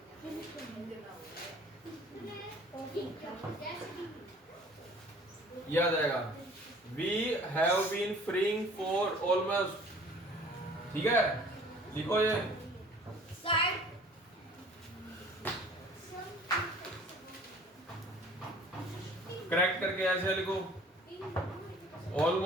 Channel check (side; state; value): both; normal; correlation 0.50